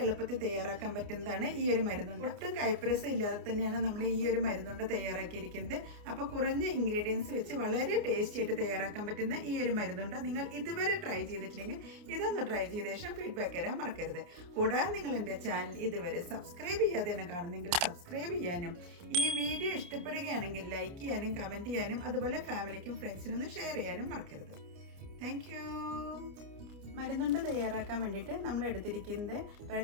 എളുപ്പത്തിൽ തയ്യാറാക്കാൻ പറ്റുന്നതാണ് ഈ ഒരു മരുന്നുണ്ട്. ഒട്ടും കൈപ്പരസം ഇല്ലാതെ തന്നെയാണ് നമ്മൾ ഈ ഒരു മരുന്നുണ്ട് തയ്യാറാക്കിയിരിക്കുന്നത്. അപ്പോൾ കുറഞ്ഞ ഇൻഗ്രീഡിയൻസ് വെച്ച് വളരെ ടേസ്റ്റി ആയിട്ട് തയ്യാറാക്കാൻ പറ്റുന്ന ഈ ഒരു മരുന്നുണ്ട് നിങ്ങൾ ഇതുവരെ ട്രൈ ചെയ്തിട്ടില്ലെങ്കിൽ ഇതൊന്ന് ട്രൈ ചെയ്ത ശേഷം ഫീഡ്ബാക്ക് തരാൻ മറക്കരുത്. കൂടാതെ നിങ്ങൾ എൻ്റെ ചാനൽ ഇതുവരെ സബ്സ്ക്രൈബ് ചെയ്യാതെയാണ് കാണുന്നെങ്കിൽ സബ്സ്ക്രൈബ് ചെയ്യാനും ഈ വീഡിയോ ഇഷ്ടപ്പെടുകയാണെങ്കിൽ ലൈക്ക് ചെയ്യാനും കമൻറ്റ് ചെയ്യാനും അതുപോലെ ഫാമിലിക്കും ഫ്രണ്ട്സിനും ഷെയർ ചെയ്യാനും മറക്കരുത്. Thank you. മരുന്നുണ്ട് തയ്യാറാക്കാൻ വേണ്ടിയിട്ട് നമ്മൾ എടുത്തിരിക്കുന്നത്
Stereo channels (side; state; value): left; late; 29 ms